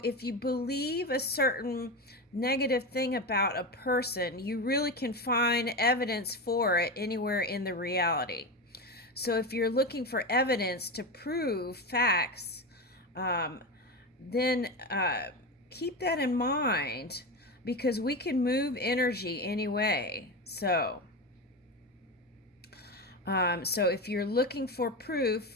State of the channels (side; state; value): both; normal; correlation 0.19